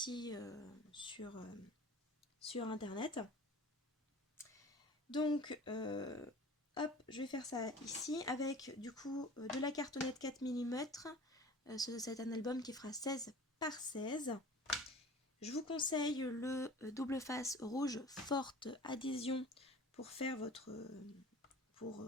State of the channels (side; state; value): both; normal; correlation 0.42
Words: sur internet. Donc hop, je vais faire ça ici avec du coup de la cartonnette 4 mm. C'est un album qui fera 16 par 16. Je vous conseille le double face rouge forte adhésion pour faire pour